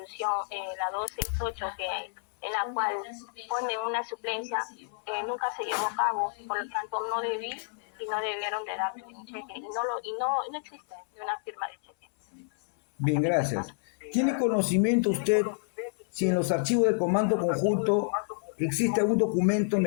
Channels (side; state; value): right; silent; 58 dB below the other